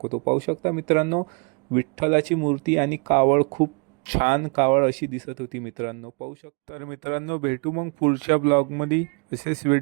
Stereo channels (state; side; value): quieter; left; 34.4 dB